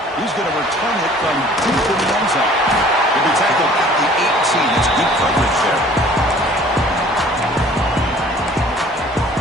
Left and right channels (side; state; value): both; normal; correlation 0.51